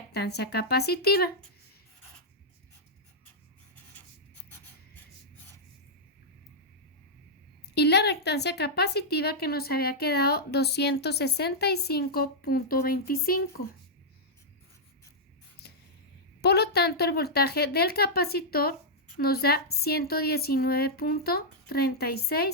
capacitiva. Y la reactancia capacitiva, que nos había quedado 265.25. Por lo tanto, el voltaje del capacitor nos da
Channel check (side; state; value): both; normal; correlation -0.07